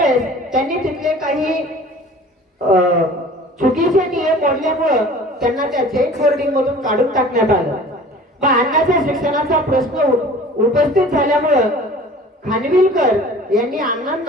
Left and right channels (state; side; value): normal; both; correlation 0.45